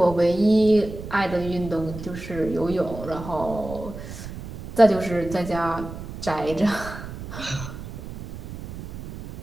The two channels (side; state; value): right; noise; rumble, 11 dB below the sound